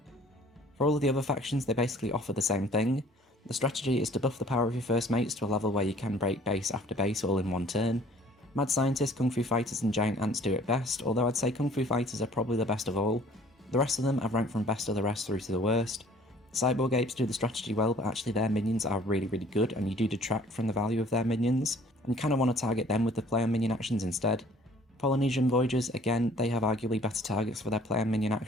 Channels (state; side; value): normal; both; correlation 0.54